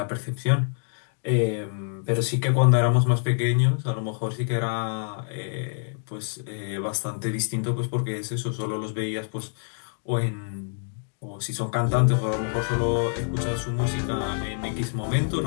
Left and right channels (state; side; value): silent; right; digital silence